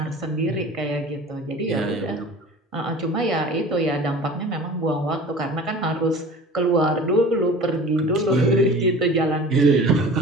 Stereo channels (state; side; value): normal; both; correlation 0.41